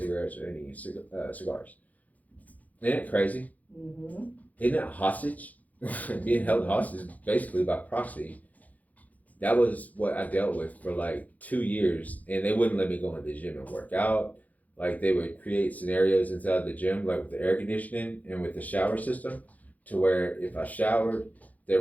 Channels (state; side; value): late; right; 0.077 ms